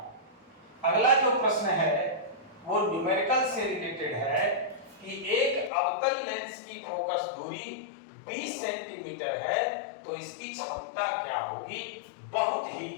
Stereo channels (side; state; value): right; drops out; at 5.7 s